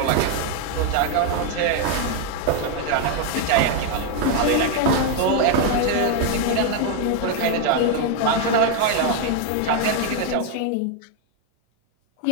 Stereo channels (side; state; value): both; different; correlation 0.01